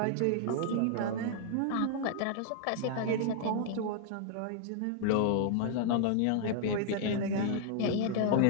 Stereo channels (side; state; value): both; different; correlation -0.01